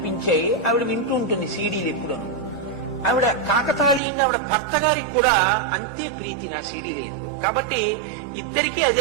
ఆవిడ వింటూ ఉంటుంది సీడీలు ఎప్పుడు. ఆవిడ కాకతాళీయంగా ఆవిడ భర్త గారికి కూడా అంతే ప్రీతి నా సీడీలు. కాబట్టి ఇద్దరికీ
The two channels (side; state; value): left; drops out; at 4.0 s